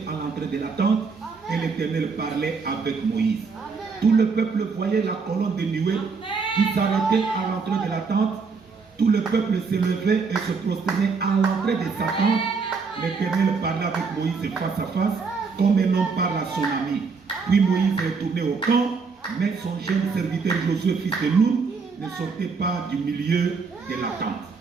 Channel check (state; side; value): quieter; left; 4.9 dB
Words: à l'entrée de la tente. Amen. Et l'Éternel parlait avec Moïse. Amen. Tout le peuple voyait la colonne de nuée qui s'arrêtait à l'entrée de la tente. Tout le peuple se levait et se prosternait à l'entrée de sa tente. L'Éternel parlait avec Moïse face à face, comme un homme parle à son ami. Puis Moïse retournait au camp, mais son jeune serviteur Josué, fils de Nun, ne sortait pas du milieu de la tente.